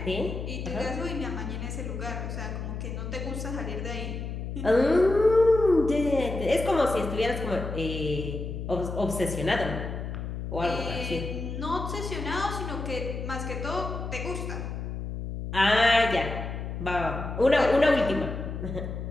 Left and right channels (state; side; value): noise; left; hum, 6 dB below the sound